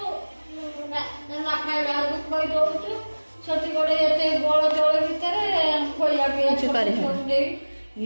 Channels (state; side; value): inverted; both; correlation -1.00